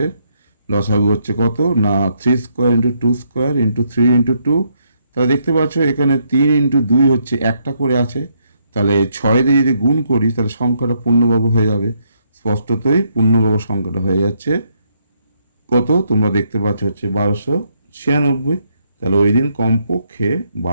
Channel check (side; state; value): both; inverted; correlation -0.74